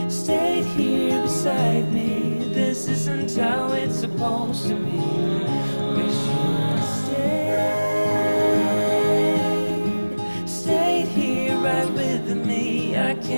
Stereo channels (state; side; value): inverted; both; correlation -1.00